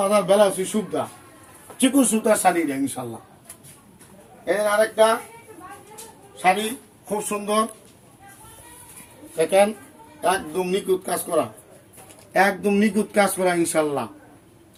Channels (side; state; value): both; identical; correlation 1.00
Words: ব্লাউজ সুবিধা, চিকুন সুতার শাড়ি দেয় ইনশাল্লাহ। এর আরেকটা শাড়ি খুব সুন্দর, দেখেন একদম নিখুঁত কাজ করা, একদম নিখুঁত কাজ করা ইনশাল্লাহ।